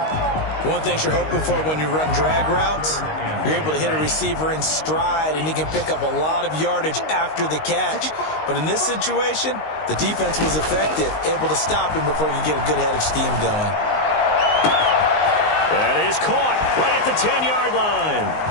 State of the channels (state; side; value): late; right; 19 ms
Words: One thing you're hoping for when you run drag routes, you're able to hit a receiver in stride, and he can pick up a lot of yardage after the catch. But in this situation, the defense was effective, able to stop him before he could get a good head of steam going. That is caught right at the 10-yard line.